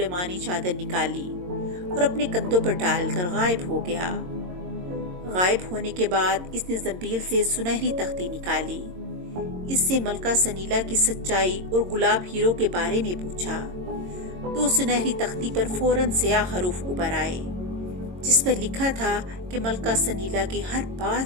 चादर निकाली और अपने कंधों पर डालकर गायब हो गया। गायब होने के बाद इसने जंबील से सुनहरी तख्ती निकाली। इससे मलका सनीला की सच्चाई और गुलाब हीरो के बारे में पूछा तो सुनहरी तख्ती पर फौरन स्याह हरूफ उभर आए जिस पर लिखा था कि मलका सनीला की हर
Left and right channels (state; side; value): late; left; 22 ms